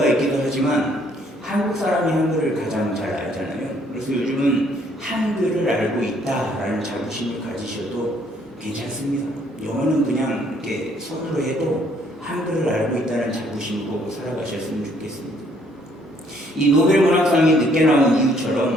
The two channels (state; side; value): normal; both; correlation 0.65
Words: 있기도 하지만 한국 사람이 한글을 가장 잘 알잖아요. 그래서 요즘은 한글을 알고 있다라는 자부심을 가지셔도 괜찮습니다. 영어는 그냥 이렇게 손으로 해도 한글을 알고 있다는 자부심으로 살아가셨으면 좋겠습니다. 이 노벨 문학상이 늦게 나온